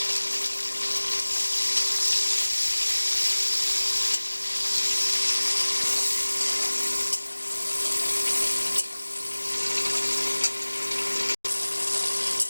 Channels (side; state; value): both; inverted; correlation -1.00